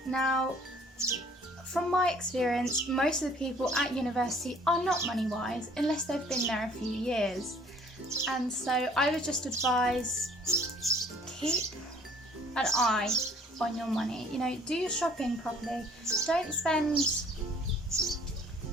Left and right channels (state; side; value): normal; both; correlation 0.56